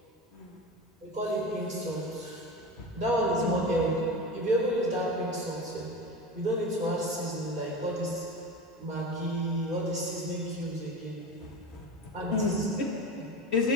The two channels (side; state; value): both; normal; correlation 0.28